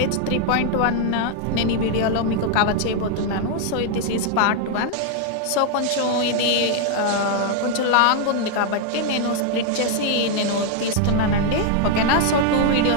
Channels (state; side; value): different; both; correlation 0.00